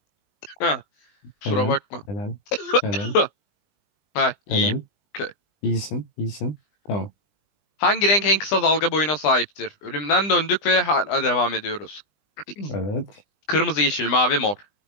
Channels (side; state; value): right; late; 20 ms